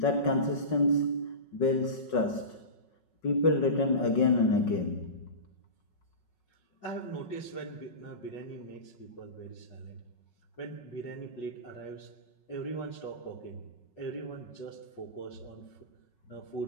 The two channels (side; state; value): right; late; 5.4 ms